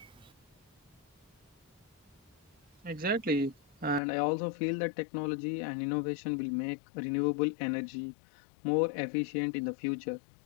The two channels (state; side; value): drops out; right; at 4.0 s